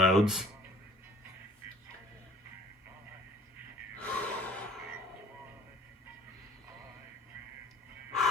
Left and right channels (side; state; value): both; normal; correlation 0.51